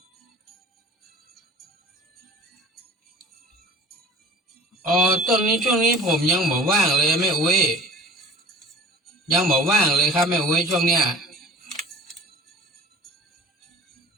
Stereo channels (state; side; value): normal; both; correlation 0.45